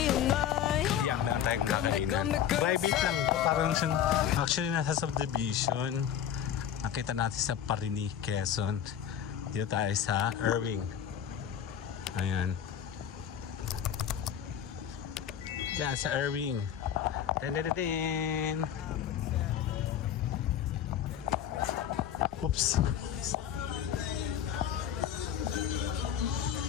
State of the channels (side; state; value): right; quieter; 9.4 dB